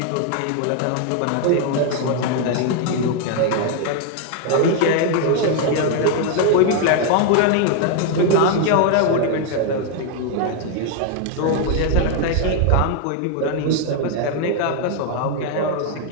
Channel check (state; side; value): different; both; correlation 0.00